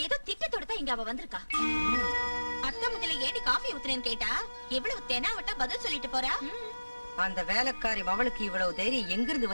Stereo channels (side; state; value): both; inverted; correlation -1.00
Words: ஏதோ திட்டத்தோட தான் இங்க அவ வந்திருக்கா. அத்தை முஞ்சில ஏடி காஃபி ஊத்துறேன்னு கேட்டா எவ்வளவு தெனாவட்டா பதில் சொல்லிட்டு போறா. அந்த வேலைக்காரி அவளுக்கு இவ்வளவு தைரியம் எங்கிருந்து